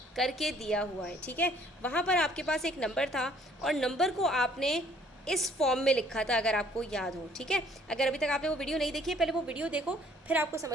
करके दिया हुआ है। ठीक है, वहाँ पर आपके पास एक नंबर था और नंबर को आपने इस फॉर्म में लिखा था, अगर आपको याद हो। ठीक है, अगर अभी तक आपने वो वीडियो नहीं देखी है, पहले वो वीडियो देखो, फिर आपको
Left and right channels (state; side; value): normal; both; correlation 0.59